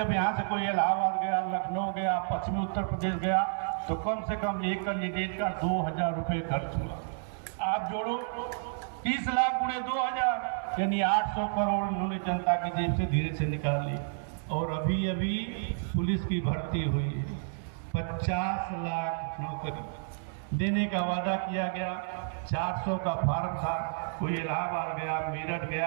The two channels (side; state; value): left; silent; digital silence